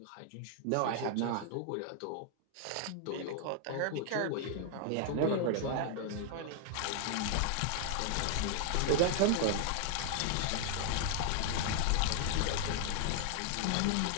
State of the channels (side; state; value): both; different; correlation 0.00